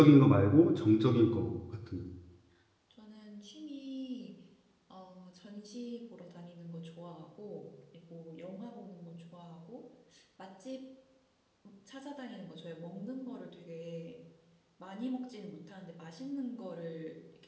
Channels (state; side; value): identical; both; correlation 1.00